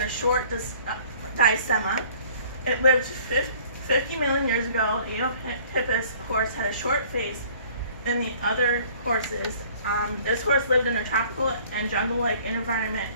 a short diastema. It lived 50 million years ago. The Eohippus horse had a short face than the other horses. This horse lived in a tropical and jungle-like environment,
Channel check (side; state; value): both; inverted; correlation -0.53